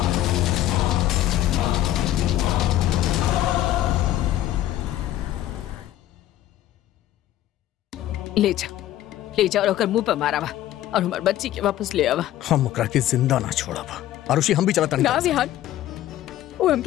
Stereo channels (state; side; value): quieter; right; 13.3 dB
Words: ले जा और ओकर मुंह पे मारावा और हमार बच्ची के वापस ले आवा। हम ओकरा के जिंदा ना छोड़ब। आरुषि, हम भी चलता नहीं। ना विहान, वो